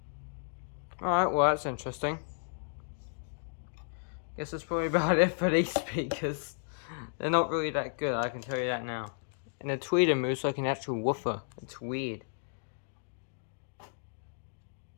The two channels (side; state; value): right; silent; digital silence